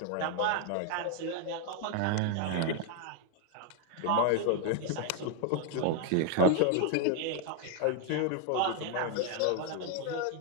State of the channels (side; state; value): both; different; correlation 0.00